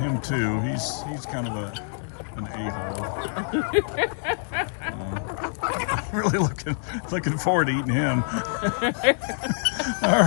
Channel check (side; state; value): right; silent; 61 dB below the other